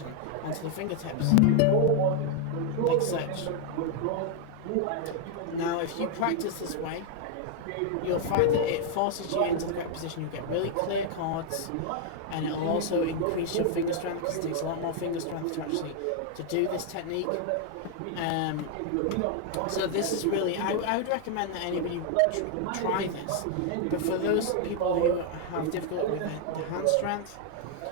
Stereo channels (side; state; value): both; different; correlation 0.00